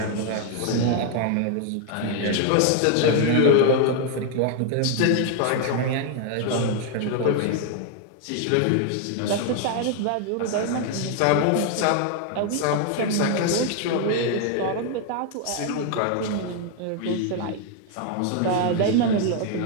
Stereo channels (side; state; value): both; different; correlation 0.00